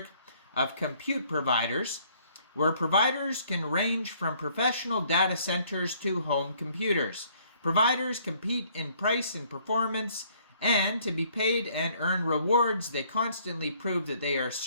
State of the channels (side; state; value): both; inverted; correlation -0.63